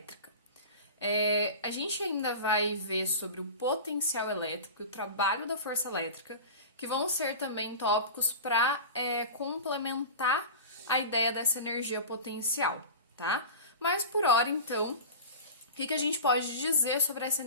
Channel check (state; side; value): inverted; both; correlation -0.32